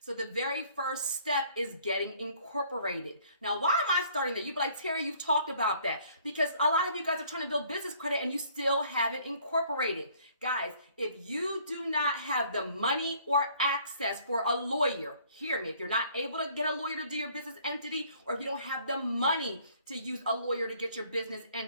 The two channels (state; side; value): inverted; both; correlation -0.59